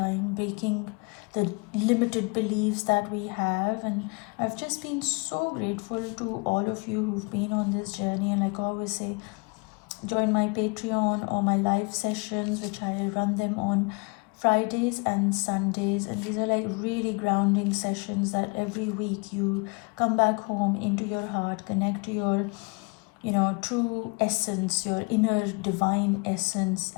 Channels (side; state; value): right; quieter; 31.7 dB